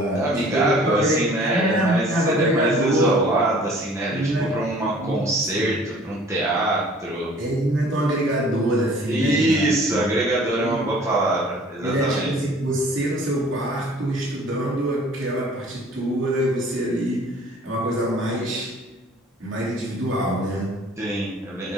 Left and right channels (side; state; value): both; normal; correlation 0.52